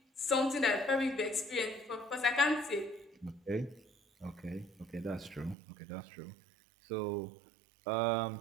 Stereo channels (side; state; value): left; drops out; at 5.6 s